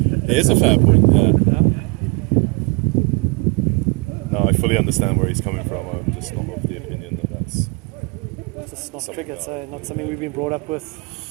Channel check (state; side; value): quieter; left; 28.3 dB